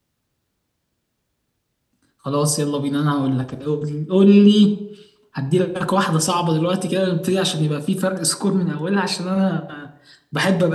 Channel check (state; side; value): identical; both; correlation 1.00